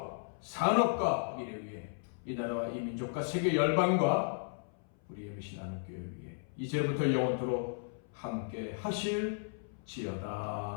산업과 미래 위에 이 나라와 이 민족과 세계 열방과 우리의 미신 하나님교회 위에 이제부터 영원토록 함께 하실지어다.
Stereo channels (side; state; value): right; silent; 54 dB below the other